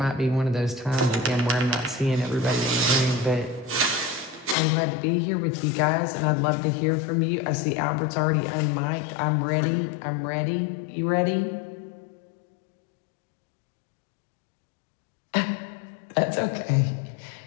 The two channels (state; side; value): drops out; right; at 4.5 s